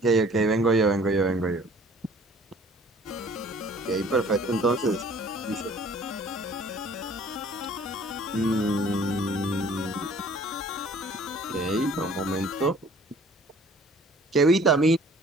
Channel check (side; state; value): both; normal; correlation 0.53